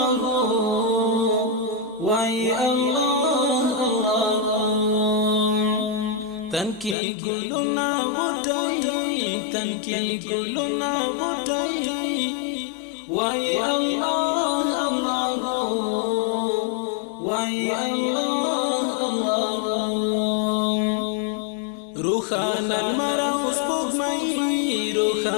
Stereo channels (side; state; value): right; drops out; at 7.0 s